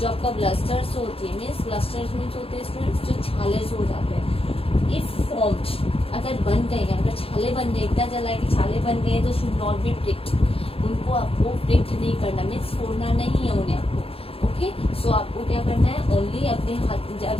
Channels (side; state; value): right; late; 0.27 ms